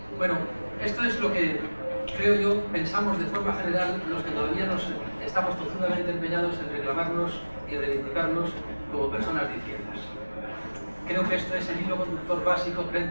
Bueno, esto es lo que creo yo pensamos de forma general los que todavía nos estamos tozudamente empeñados en reclamarnos y reivindicarnos como personas de izquierdas. Creo que esto es el hilo conductor básico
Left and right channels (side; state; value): both; inverted; correlation -1.00